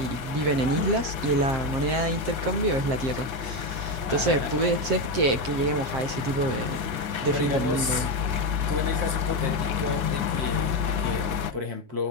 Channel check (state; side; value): late; left; 7.7 ms